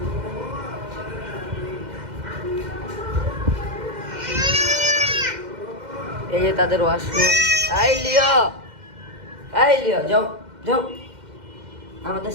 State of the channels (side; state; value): left; late; 2.1 ms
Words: এই যে তাদের ওয়াশরুম। আই লিও, আই লিও, যাও যাও, আমাদের